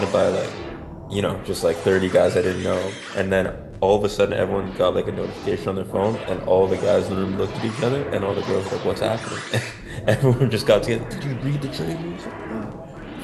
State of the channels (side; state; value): both; identical; correlation 1.00